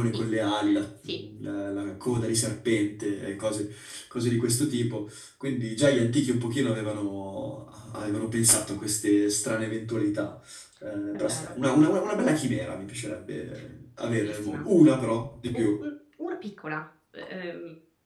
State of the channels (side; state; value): both; identical; correlation 1.00